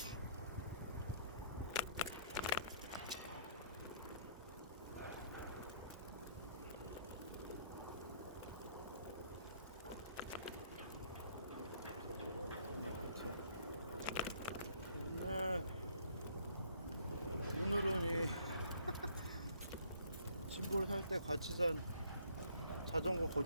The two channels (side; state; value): both; inverted; correlation -0.62